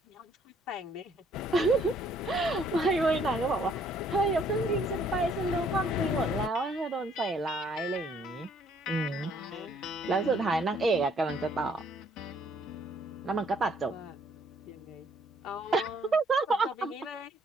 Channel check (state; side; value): normal; both; correlation 0.64